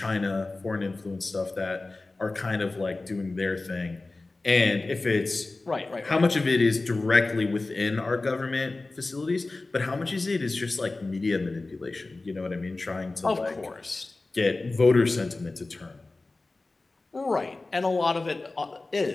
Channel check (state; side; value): quieter; right; 3.3 dB